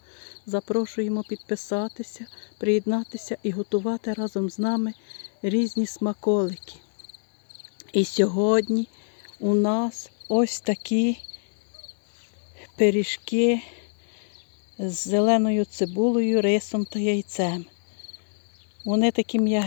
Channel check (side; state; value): right; silent; digital silence